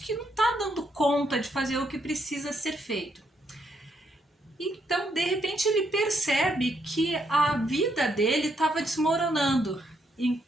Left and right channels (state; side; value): normal; both; correlation 0.76